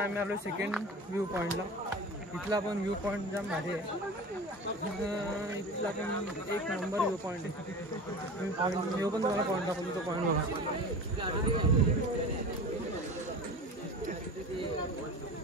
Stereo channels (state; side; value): normal; both; correlation 0.33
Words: आम्ही आलो सेकंड व्ह्यू पॉइंटला इथला पण व्ह्यू पॉइंट जाम भारी आहे इथला पण एक नंबर व्ह्यू पॉइंट आहे पॉइंट व्ह्यू पण तुम्हाला पॉइंट दाखवतो तो पॉइंट बघा